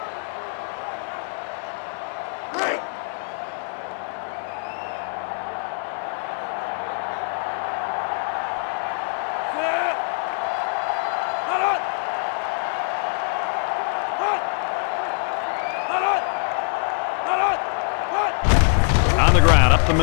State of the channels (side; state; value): right; silent; 62 dB below the other